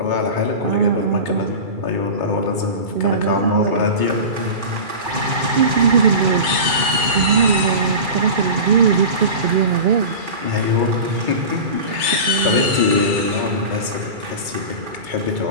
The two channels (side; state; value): left; late; 2.2 ms